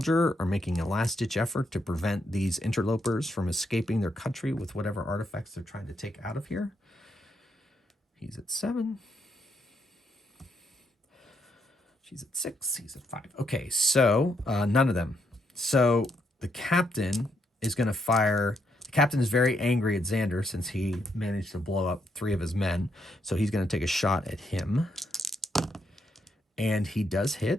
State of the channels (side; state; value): both; normal; correlation 0.77